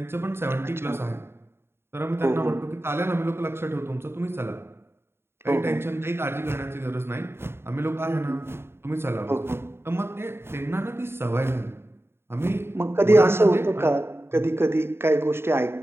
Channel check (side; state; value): left; late; 0.12 ms